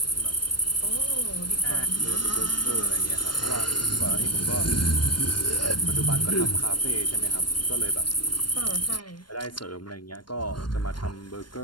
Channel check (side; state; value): right; late; 0.72 ms